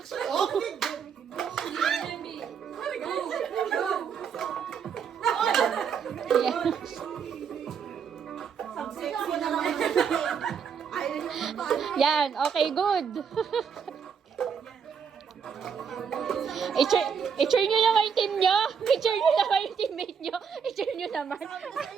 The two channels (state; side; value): quieter; left; 6.9 dB